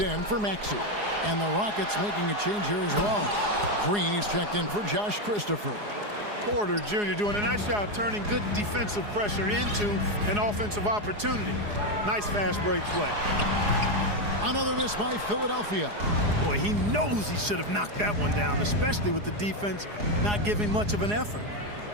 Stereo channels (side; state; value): left; late; 4.8 ms